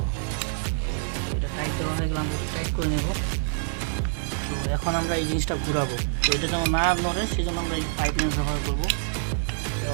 এটা টাইট দেওয়া হয়ে গেলে আমরা টাইট করে নেব। তো এখন আমরা এই জিনিসটা ঘুরাবো। তো এটা যেমন না নড়ে, সেই জন্য আমরা এই পাইপ লাইন ব্যবহার করবো। তো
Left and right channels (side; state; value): left; silent; digital silence